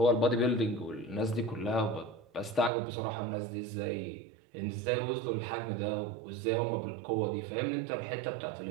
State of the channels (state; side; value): drops out; left; at 2.7 s